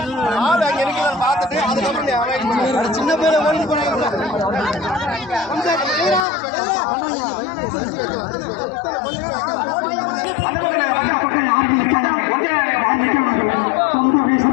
ஆள் அங்க நிக்கிறான் பார்த்துட்டு அதுக்கப்புறம் நீ அவாய்ட் பண்ணு. சின்ன பேரை ஓடி போறாங்க.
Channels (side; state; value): right; drops out; at 6.2 s